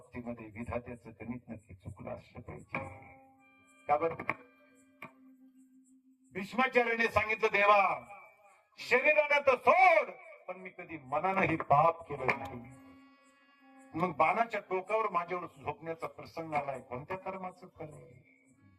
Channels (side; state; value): both; identical; correlation 1.00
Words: विधात्याचं गणित नक्की चुकलं असलं पाहिजे. का बरं? भीष्माचार्याने सांगितलं देवा शरीराने तर सोड, पण मी कधी मनानंही पाप केलं नाही. मग बाणाच्या टोकावर माझ्यावर झोपण्याचा प्रसंग आलाय, कोणत्या कर्माचं फल आहे?